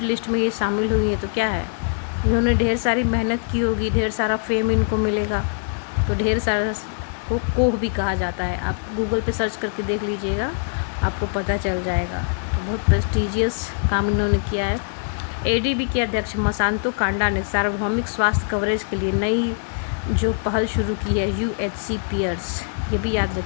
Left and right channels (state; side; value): silent; right; 64 dB below the other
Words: लिस्ट में ये शामिल हुई है तो क्या है, इन्होंने ढेर सारी मेहनत की होगी, ढेर सारा फेम इनको मिलेगा, तो ढेर सारा को कोह भी कहा जाता है। आप गूगल पे सर्च करके देख लीजिएगा, आपको पता चल जाएगा। तो बहुत प्रेस्टीजियस काम इन्होंने किया है। एडीबी के अध्यक्ष मसांतो कांडा ने सार्वभौमिक स्वास्थ्य कवरेज के लिए नई जो पहल शुरू की है, यूएचसी पियर्स, ये भी याद